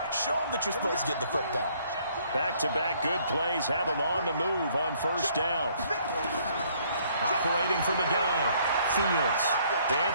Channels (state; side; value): inverted; both; correlation -0.64